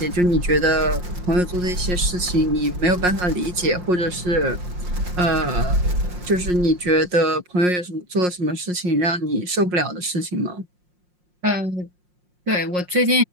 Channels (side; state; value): left; late; 5.6 ms